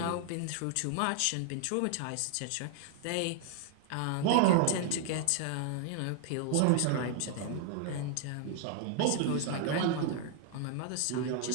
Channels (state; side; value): different; both; correlation 0.00